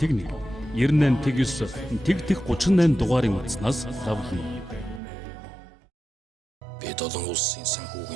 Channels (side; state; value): left; drops out; at 5.0 s